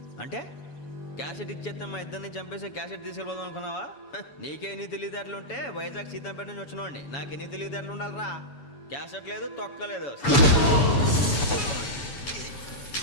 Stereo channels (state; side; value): late; right; 7.1 ms